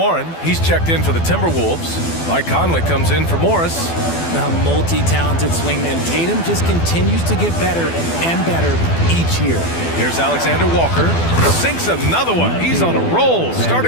he's checked in for the Timberwolves. Mike Conley comes in for Morris. A multi-talented swingman. Tatum just continues to get better and better each year. Here's Alexander Walker. Sinks another one. He's on a roll,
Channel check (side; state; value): right; late; 12 ms